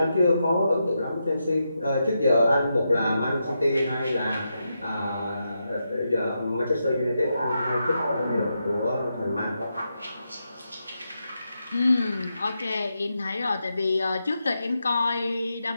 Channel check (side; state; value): both; inverted; correlation -0.85